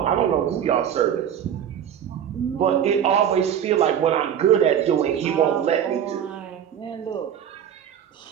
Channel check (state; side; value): quieter; left; 9.2 dB